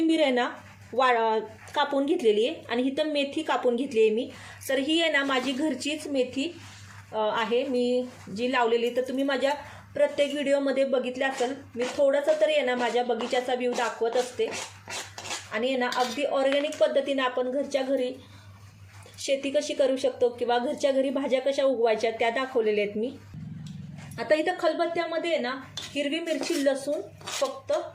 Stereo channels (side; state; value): both; identical; correlation 1.00